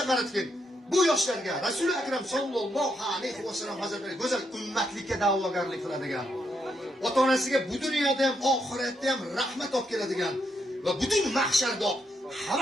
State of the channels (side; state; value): both; normal; correlation 0.79